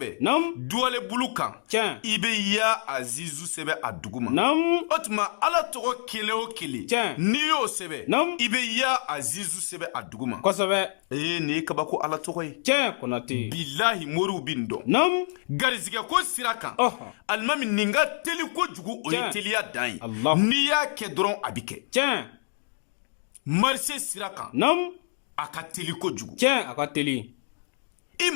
Naam. Duwalen bulu kan. Tiɲɛ. I bɛ ya Azizu sɛbɛn a duguma. Naam. O tuma Ala tɔgɔ kelen o kelen. Tiɲɛ. N'i y'o sɛbɛn. Naam. I bɛ ya Azizu sɛbɛn a duguma. Kosɛbɛ. Nin ye kabako Ala tɔgɔ ye. Tiɲɛ Konate. Bilahi moriw bɛ nin dɔn. Naam. Garizigɛ ko sira kan. Ɔhɔ. Alimami nin ka teli kojugu o ye Tiɲɛ. teliya dan ye. Allah. N'i y'a kɛ dɔrɔn a bɛ kɛ. Tiɲɛ. Marché sira kan. Naam. A ka teli kojugu. Tiɲɛ a ka teli. I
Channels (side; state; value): right; silent; digital silence